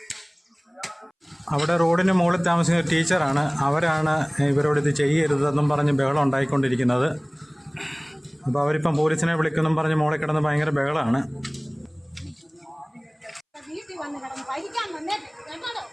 അവിടെ റോഡിന് മുകളിൽ താമസിക്കുന്ന ടീച്ചറാണ്. അവരാണ് ഇവരോട് ഇത് ചെയ്യരുതെന്നും പറഞ്ഞ് ബഹളം ഉണ്ടായിക്കൊണ്ടിരിക്കുന്നത്. അപ്പോൾ അവരിപ്പം പോലീസിനെ വിളിക്കുമെന്നും പറഞ്ഞ് മോളെ കിടന്ന് ഭയങ്കര ബഹളമാണ്. വീട്ടിൽ വന്ന് കിടന്ന് ഭരിക്കാൻ വന്നേട്ടോ.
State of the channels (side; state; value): both; identical; correlation 1.00